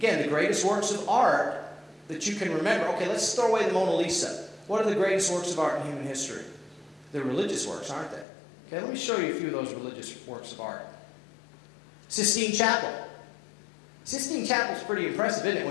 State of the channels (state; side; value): drops out; right; at 8.2 s